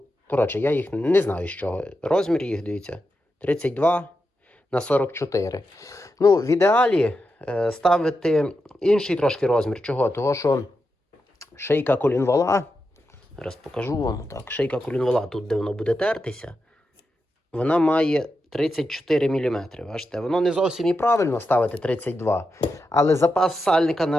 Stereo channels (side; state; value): both; normal; correlation 0.88